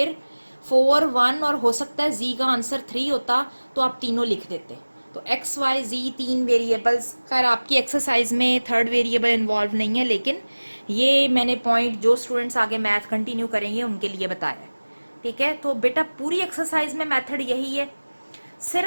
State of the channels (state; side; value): inverted; both; correlation -1.00